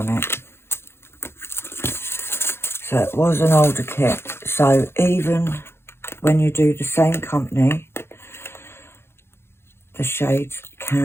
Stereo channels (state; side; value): late; right; 0.12 ms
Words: it. So it was an older kit. So even when you do the same company, the shades